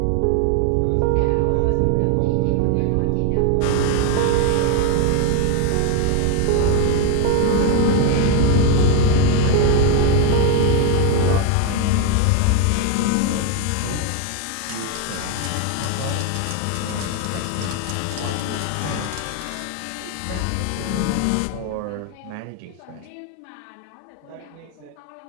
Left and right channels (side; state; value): both; different; correlation 0.01